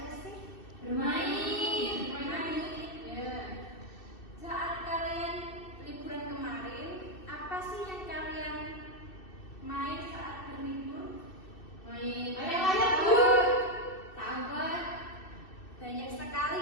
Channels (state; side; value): late; right; 2.6 ms